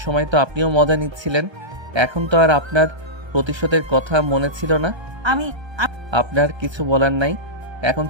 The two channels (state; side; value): late; left; 1.3 ms